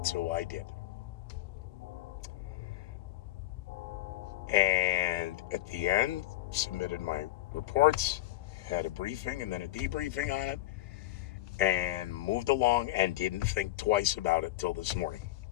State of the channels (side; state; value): right; quieter; 15.7 dB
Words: So I did. And at the end, submitted my reports, had a briefing and then a debriefing on it, and moved along and didn't think twice about it till this morning.